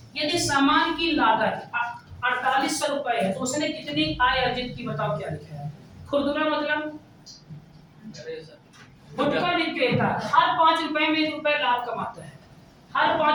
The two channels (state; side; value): identical; both; correlation 1.00